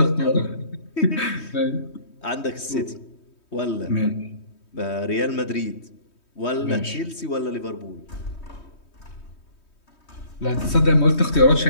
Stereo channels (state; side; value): late; right; 3.2 ms